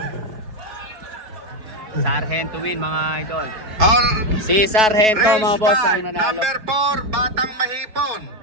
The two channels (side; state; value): left; late; 4.6 ms